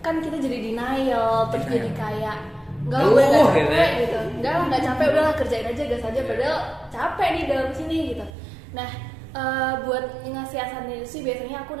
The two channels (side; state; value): left; drops out; at 8.3 s